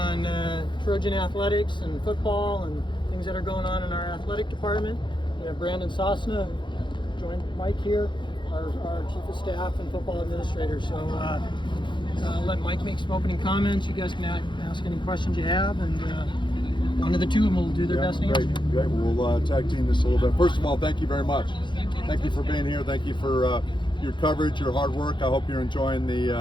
Trojan athletics and football and things that are going on in our athletic department. We have Brandon Sosna, joined Mike here, our chief of staff and football administrator. So I'll let Mike make some opening comments. You guys can ask any questions you have, and one of the two of them will do their best to answer. Great. We'll tag team this a little bit. First of all, thank you very much. Thank you for being here. Thank you for your coverage, your hard work. I hope you're enjoying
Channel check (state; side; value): late; right; 0.23 ms